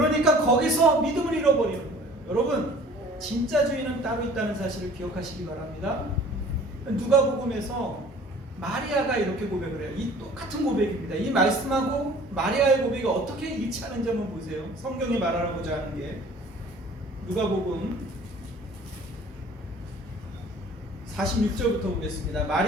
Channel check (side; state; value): both; normal; correlation 0.49